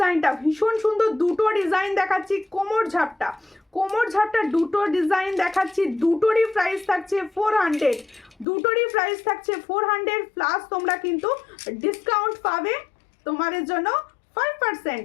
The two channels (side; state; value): right; drops out; at 8.5 s